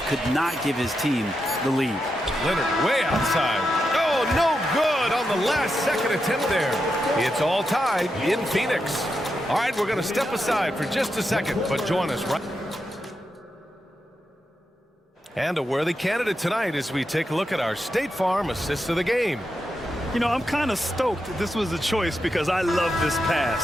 could not give his team the lead. Leonard way outside. Oh, no good on the last second attempt there. It's all tied in Phoenix. All right, we're going to step aside for just a second, but join us right. And a worthy candidate tonight as we take a look at our State Farm assist of the game. You know, I'm kind of stoked this was a choice because I love this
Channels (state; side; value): normal; both; correlation 0.86